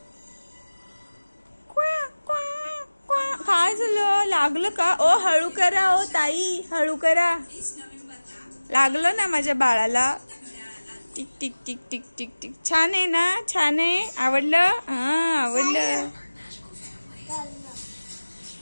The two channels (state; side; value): inverted; both; correlation -1.00